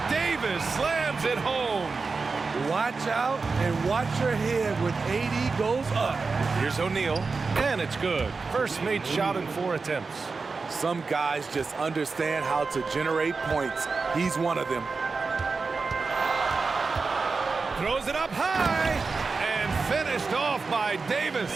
Davis slams it home. Watch out and watch your head when AD goes up. Here's O'Neal. And it's good. First made shot in 4 attempts. Some guys just understand how to generate points. He's one of them. Throws it up high and finished off by Davis.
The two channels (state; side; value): quieter; left; 4.4 dB